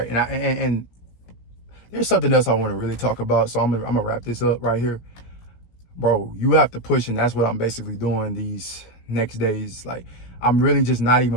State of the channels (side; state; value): right; late; 17 ms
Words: And there's something else I want to really talk about, so I'm gonna wrap this up right here. Bro, you have to push, and that's what I'm basically doing these next days. Like, I'm really just not